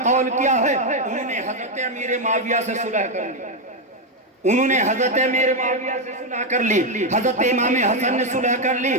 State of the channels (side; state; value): both; normal; correlation 0.04